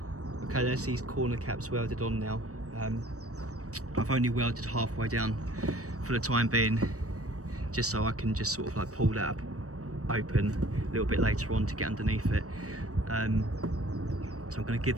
Okay, there's these corner caps welded on now. I've only welded halfway down for the time being, just so I can just sort of like pull that up open a little bit later on to get underneath it. So I'm going to give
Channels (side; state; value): left; late; 0.66 ms